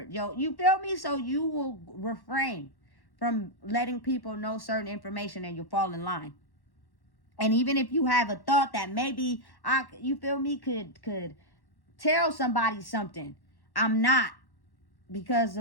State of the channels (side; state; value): right; late; 1.1 ms